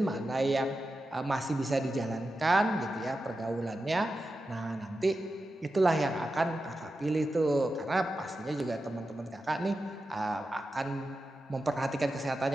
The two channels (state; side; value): normal; both; correlation 0.91